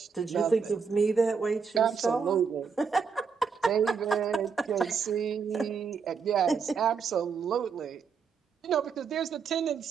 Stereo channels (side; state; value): left; quieter; 5.8 dB